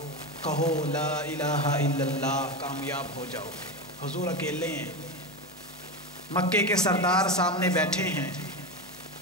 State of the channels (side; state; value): both; normal; correlation 0.18